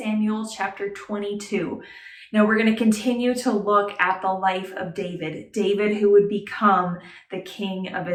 chapter 22. Now we're going to continue to look at the life of David who would become the king of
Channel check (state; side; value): identical; both; correlation 1.00